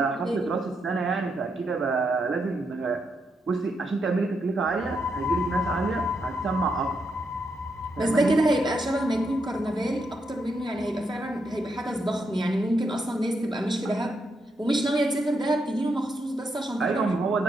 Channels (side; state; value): both; normal; correlation 0.81